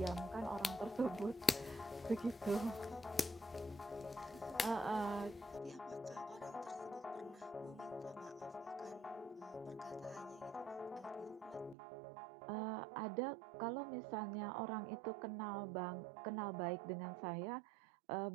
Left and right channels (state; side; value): drops out; left; at 11.8 s